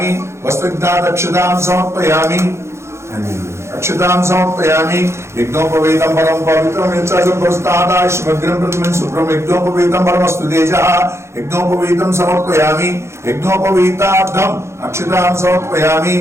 వస్త్రజ్ఞాతక్షతాం సమర్పయామి, అక్షతాం సమర్పయామి. యజ్ఞోపవీతం పరం పవిత్రం యజ్ఞం ప్రతిమం శుభ్రం యజ్ఞోపవీతం పరమస్తు తేజః. యజ్ఞోపవీతం సమర్పయామి. యజ్ఞోపవీతార్థం అక్షతాం సమర్పయామి,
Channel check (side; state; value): left; late; 0.13 ms